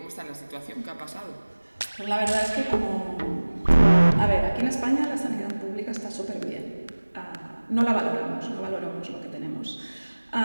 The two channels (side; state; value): both; inverted; correlation -1.00